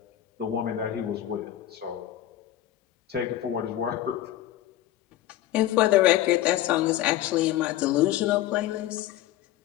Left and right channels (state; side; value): quieter; right; 13.3 dB